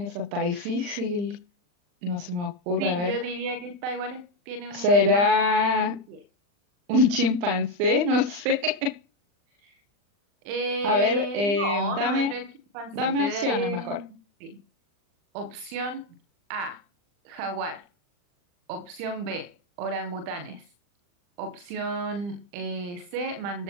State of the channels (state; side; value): late; left; 40 ms